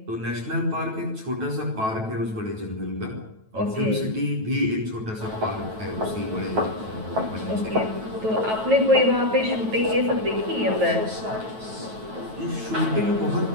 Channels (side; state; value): left; late; 9.2 ms